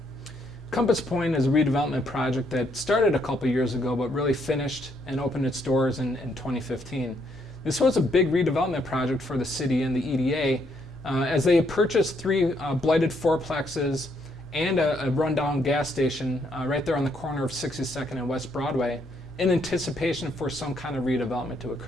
Compass Point is a redevelopment project that started a couple of years ago but really finished and opened its doors in 2015. This was a big redevelopment project for the city and the EDA as they purchased 3 blighted fourplexes and a rundown gas station right there on the corner of 62nd and West Broadway in anticipation for some kind of redevelopment to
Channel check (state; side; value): normal; both; correlation 0.72